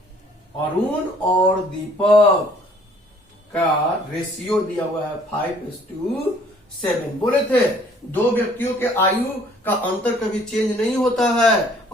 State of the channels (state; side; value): normal; both; correlation 0.58